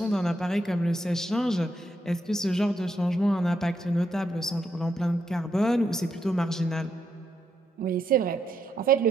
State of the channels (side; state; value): both; normal; correlation 0.80